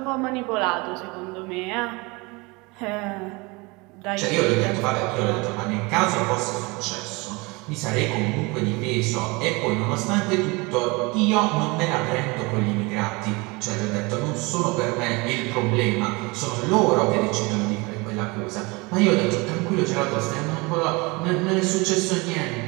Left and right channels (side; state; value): left; quieter; 25.9 dB